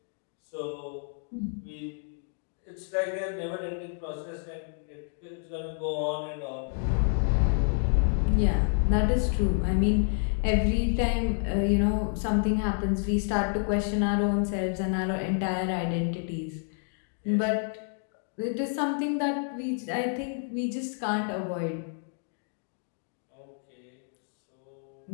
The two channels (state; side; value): silent; right; 58 dB below the other